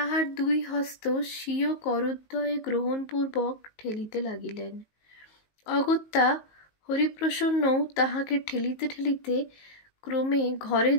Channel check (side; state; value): right; late; 19 ms